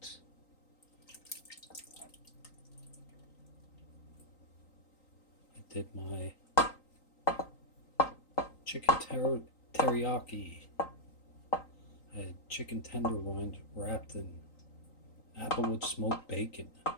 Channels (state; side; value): late; right; 3.9 ms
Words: I did my chicken teriyaki. I had chicken tenderloins wrapped in applewood smoked bacon.